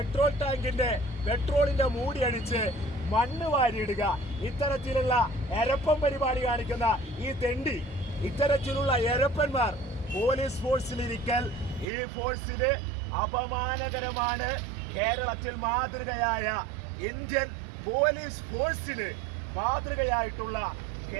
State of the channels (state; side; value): drops out; left; at 11.9 s